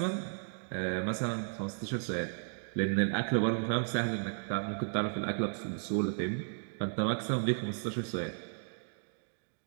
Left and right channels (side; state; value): left; silent; digital silence